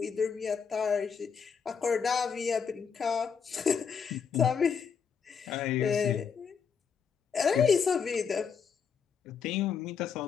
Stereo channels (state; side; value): quieter; right; 6.4 dB